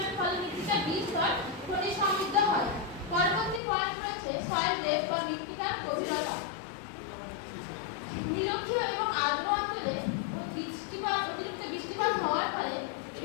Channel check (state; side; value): drops out; right; at 3.6 s